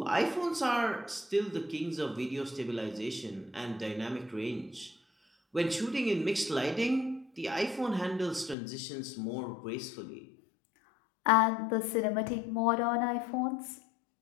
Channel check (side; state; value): right; drops out; at 8.6 s